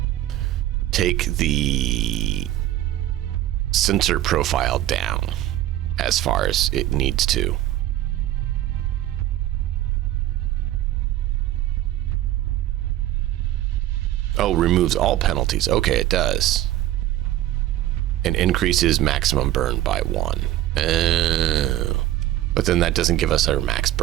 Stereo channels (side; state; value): left; quieter; 13.9 dB